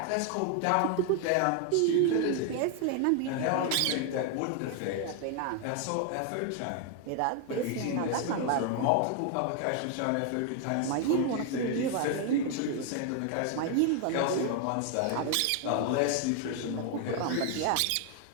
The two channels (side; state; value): both; different; correlation 0.00